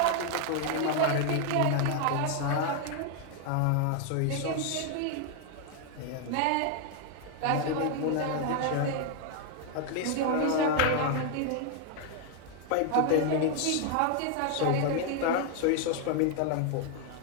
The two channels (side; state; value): both; different; correlation 0.01